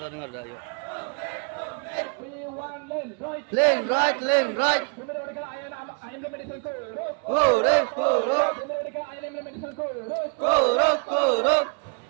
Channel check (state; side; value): quieter; left; 36.9 dB